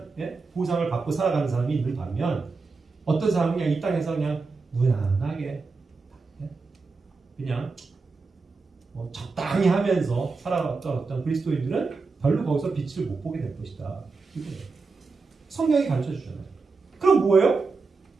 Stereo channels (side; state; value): left; quieter; 4.3 dB